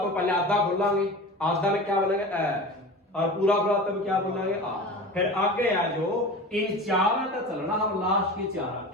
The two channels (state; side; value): normal; both; correlation 0.33